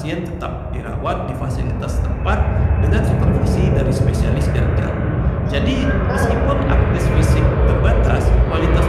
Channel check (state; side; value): identical; both; correlation 1.00